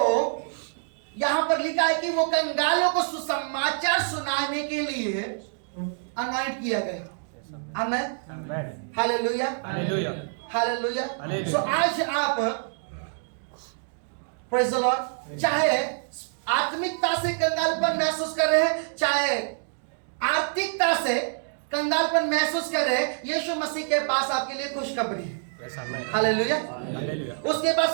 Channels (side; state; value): left; silent; digital silence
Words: यहां पर लिखा है कि वो कंगालों को सुसमाचार सुनाने के लिए अनॉइंट किया गया। आमेन। Hallelujah, hallelujah. सो आज आप प्रेज़ द लॉर्ड, चाहे आत्मिकता से कंगालपन महसूस कर रहे हैं, चाहे आर्थिकता से कंगालपन महसूस कर रहे हैं, यीशु मसीह के पास आपके लिए खुशखबरी है। हालेलुया। उसके पास